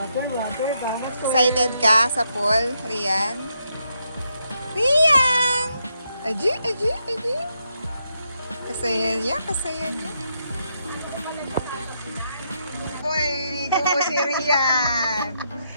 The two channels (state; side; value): inverted; both; correlation -0.80